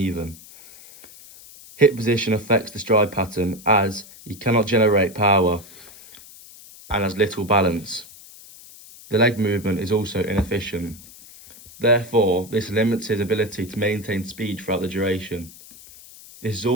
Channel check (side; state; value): left; noise; hiss, 20 dB below the sound